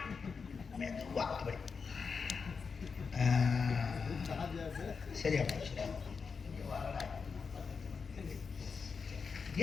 மெதுவா அப்படி சரியா போச்சு.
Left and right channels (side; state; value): right; quieter; 5.4 dB